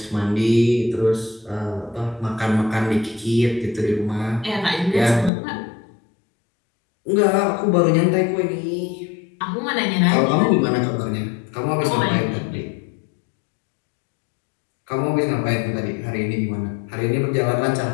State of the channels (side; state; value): right; drops out; at 5.3 s